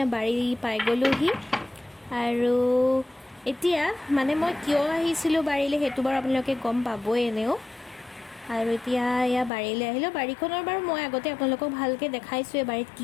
বাৰী পাই গ'লোহি আৰু এতিয়া মানে মই কিয় আহিছিলোঁ বাৰীলৈ সেইটো বাৰু আপোনালোকে গম পাবই এনেও আৰু এতিয়া এয়া বাৰীলৈ আহিলোঁ বাৰীখনৰ বাৰু মই আগতে আপোনালোকক ভালকৈ দেখাইছোঁ বাৰীত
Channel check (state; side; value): drops out; right; at 9.5 s